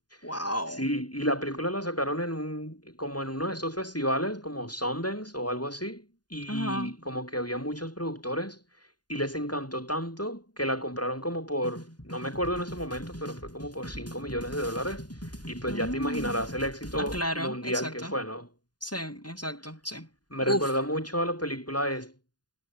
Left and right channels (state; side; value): late; right; 0.70 ms